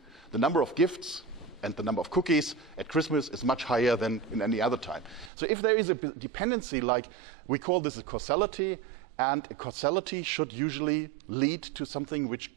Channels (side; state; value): left; drops out; at 5.3 s